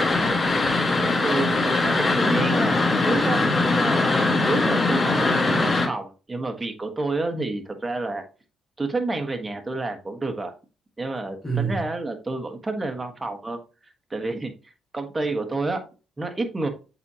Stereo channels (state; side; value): normal; both; correlation 0.84